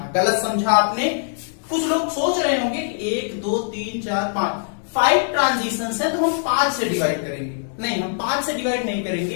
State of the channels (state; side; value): silent; right; digital silence